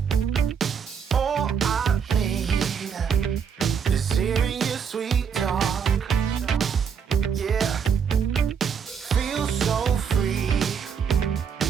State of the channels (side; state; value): left; quieter; 6.9 dB